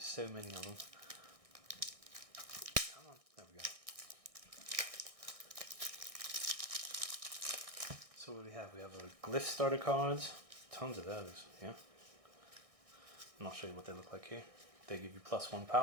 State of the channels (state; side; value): late; left; 1.6 ms